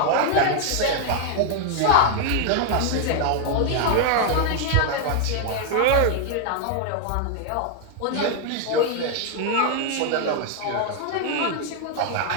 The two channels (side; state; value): both; different; correlation 0.00